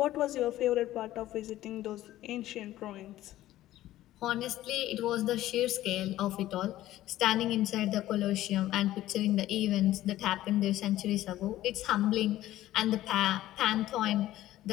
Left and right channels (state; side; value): quieter; right; 14.6 dB